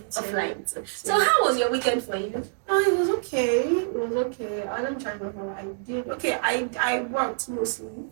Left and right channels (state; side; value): silent; left; digital silence